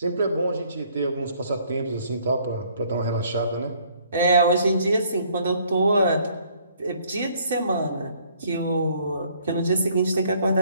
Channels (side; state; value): both; inverted; correlation -0.62